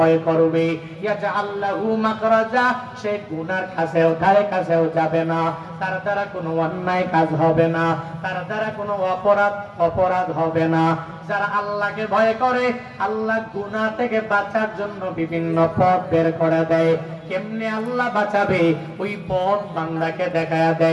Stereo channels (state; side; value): identical; both; correlation 1.00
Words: করবে, ইয়াজআল লাহু মাখরাজা, সে গুনার কাছেও ধারে কাছেও যাবে না, তার দ্বারা কোনো অন্যায় কাজ হবে না, তার দ্বারা কোনো অপরাধ হবে না। যারা আল্লাহকে ভয় করে, আল্লাহ গুনাহ থেকে বাঁচার জন্য বিভিন্ন পথ বের করে দেয়। কেমনে আল্লাহ বাঁচাবে, ওই পথ বান্দাকে দেখায়া